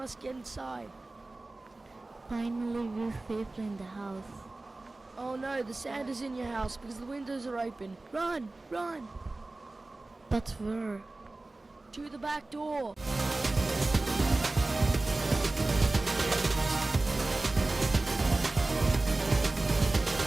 get inside. Finally, we're safely in the house. Oh no, the sand is in your house because the windows are open. Run! But where? To the back door.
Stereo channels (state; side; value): quieter; left; 3.0 dB